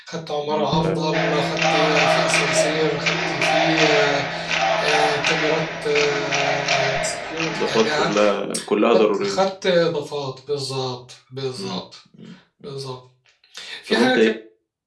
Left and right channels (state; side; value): identical; both; correlation 1.00